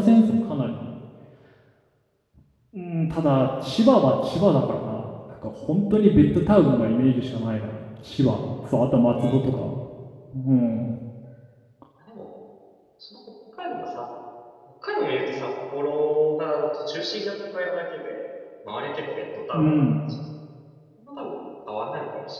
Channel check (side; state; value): both; identical; correlation 1.00